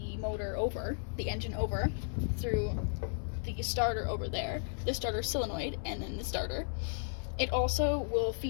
motor over, the engine over, through the starter over there, the starter solenoid, and then the starter, it also will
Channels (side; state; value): right; silent; 55 dB below the other